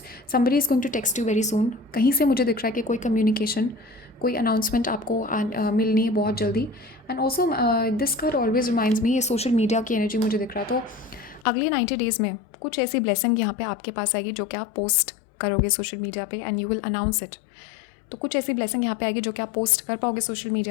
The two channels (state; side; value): drops out; right; at 11.5 s